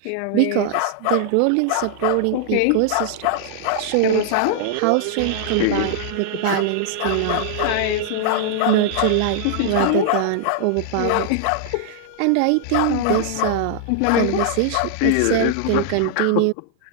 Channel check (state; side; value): different; both; correlation -0.01